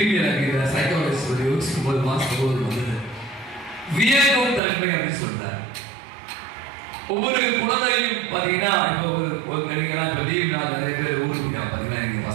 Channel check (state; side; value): drops out; left; at 4.6 s